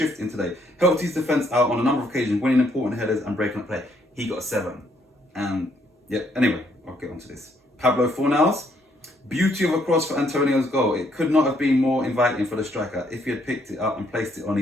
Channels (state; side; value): normal; both; correlation 0.70